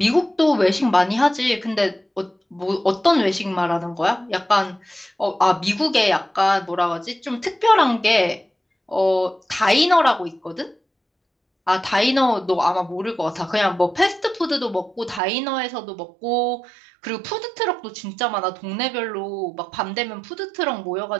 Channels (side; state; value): left; drops out; at 15.2 s